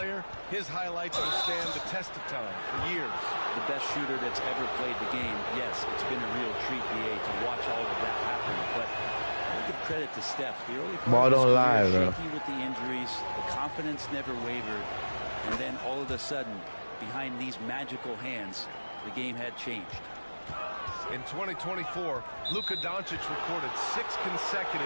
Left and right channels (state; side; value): inverted; both; correlation -1.00